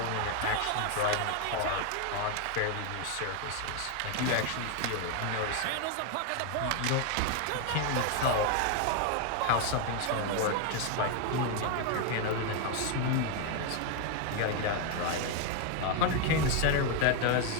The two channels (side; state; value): both; different; correlation 0.01